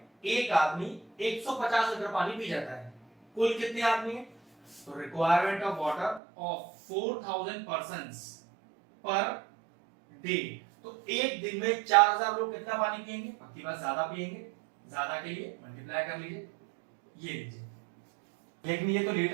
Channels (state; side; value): drops out; left; at 6.2 s